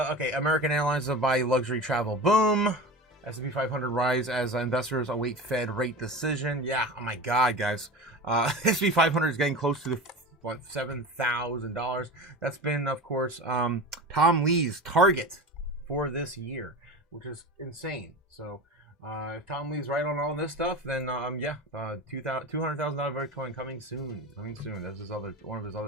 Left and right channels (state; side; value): normal; both; correlation 0.30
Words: American Airlines buy luxury travel boom. S&P 500 rise as investors await Fed rate decision. Yeah, oh my God, guys. S&P 500 is getting close to the $7,000. That's been, of course, Tom Lee's target for this year, which is insane. So if Tom Lee's right on all this stuff, then yeah, $200,000 Bitcoin coming soon. That's one of his